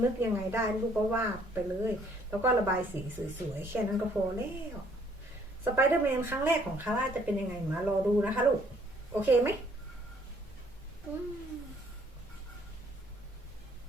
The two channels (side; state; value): both; normal; correlation 0.63